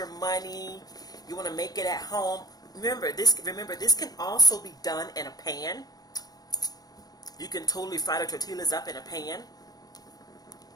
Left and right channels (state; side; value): late; right; 0.19 ms